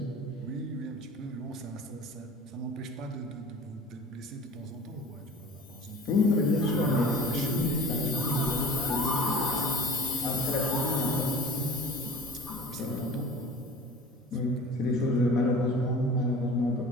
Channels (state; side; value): normal; both; correlation 0.42